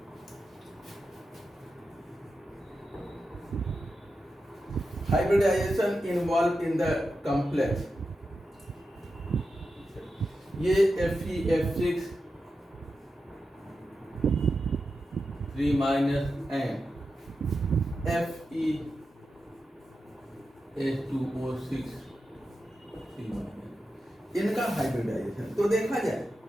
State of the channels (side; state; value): both; normal; correlation 0.90